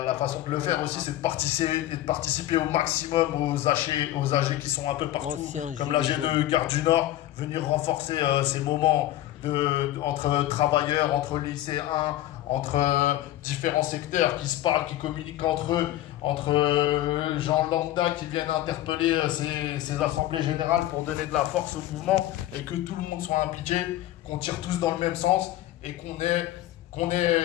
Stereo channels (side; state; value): right; quieter; 14.2 dB